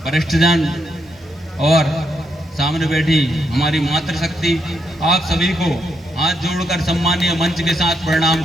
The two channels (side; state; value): both; normal; correlation 0.78